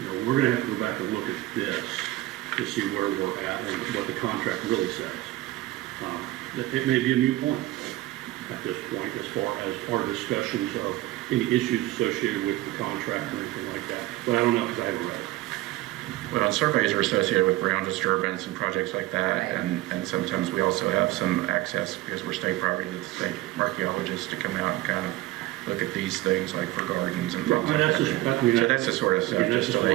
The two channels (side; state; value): left; quieter; 17.2 dB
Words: we're gonna have to go back and look at this to see where we're at and what the contract really says. It may be a moot point at this point as far as our discussions of any issues associated with the contract or anything like that. But I don't know because I haven't read it. Well, surveys are associated with ground disturbance and projects like that, Right. and sometimes we also have some access, because we're state property, to the state archaeologists to come out and kind of look at these things, like for gardens and things like that. So that's the sort of stuff, just to